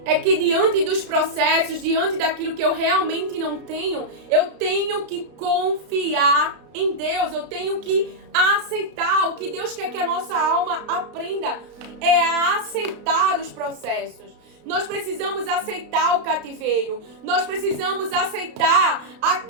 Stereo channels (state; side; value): late; left; 32 ms